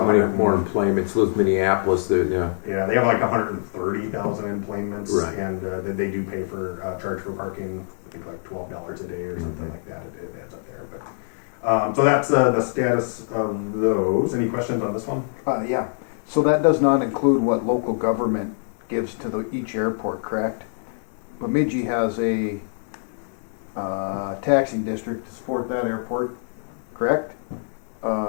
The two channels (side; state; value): right; silent; 61 dB below the other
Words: many 100 more enplanements. Live Minneapolis, yeah. Yeah, they have like 130,000 enplanements, Right. and they do pay for charge for parking. I think like $12 a day or something like that. It adds up there, but so that's the status of those. Any questions on this one? Yeah, so that does not include what local government gives to each airport, correct? Bemidji has a taxing district to support that airport, correct?